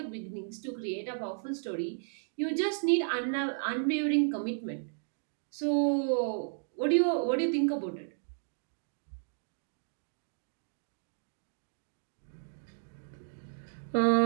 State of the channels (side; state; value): left; silent; digital silence